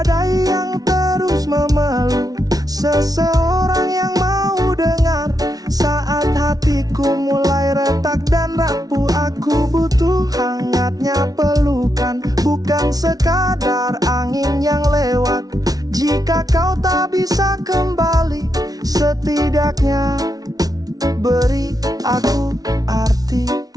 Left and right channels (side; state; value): left; late; 0.18 ms